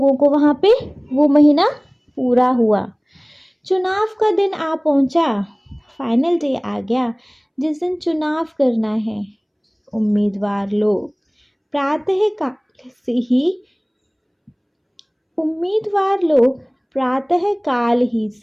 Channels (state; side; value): identical; both; correlation 1.00